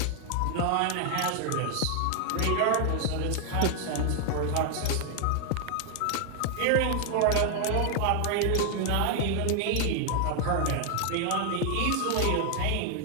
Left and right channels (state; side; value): different; both; correlation 0.00